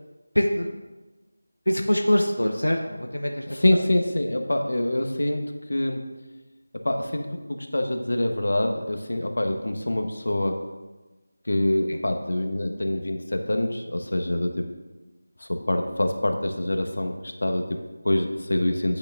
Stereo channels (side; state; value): both; inverted; correlation -0.99